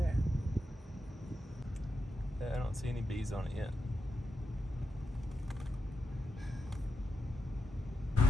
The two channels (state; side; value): normal; both; correlation 0.88